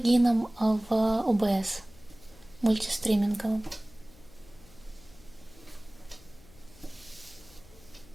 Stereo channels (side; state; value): left; noise; hum, 24 dB below the sound